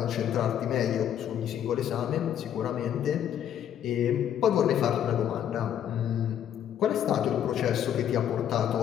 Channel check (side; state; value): right; quieter; 10.0 dB